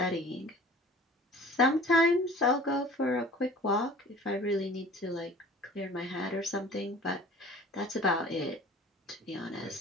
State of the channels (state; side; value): normal; both; correlation 0.45